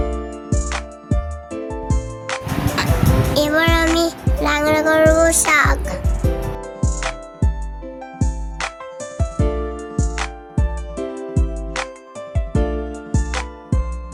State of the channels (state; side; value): identical; both; correlation 1.00